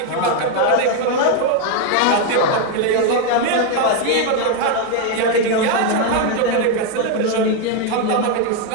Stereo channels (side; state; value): both; different; correlation 0.01